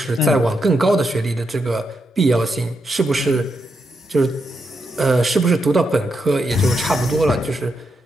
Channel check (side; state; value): both; normal; correlation 0.83